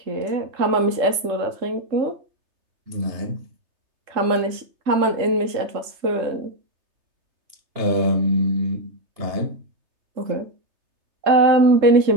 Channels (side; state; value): left; late; 3.3 ms